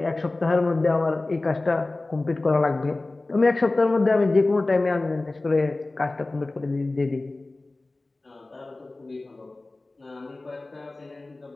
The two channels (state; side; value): quieter; right; 3.1 dB